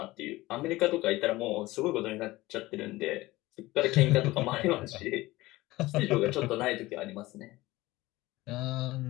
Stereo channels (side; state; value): right; quieter; 18.9 dB